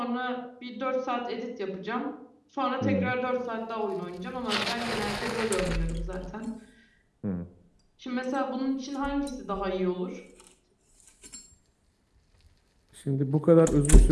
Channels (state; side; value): identical; both; correlation 1.00